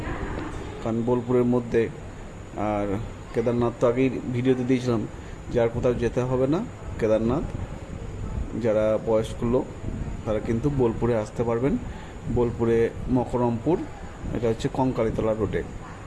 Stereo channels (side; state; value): both; identical; correlation 1.00